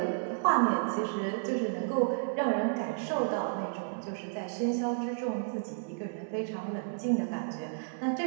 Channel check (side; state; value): left; silent; 56 dB below the other